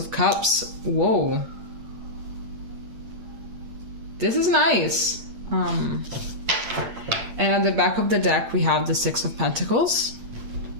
Cups. Whoa. This is nice. And at the back of the deck, we have the Six of Pentacles.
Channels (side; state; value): left; late; 8.8 ms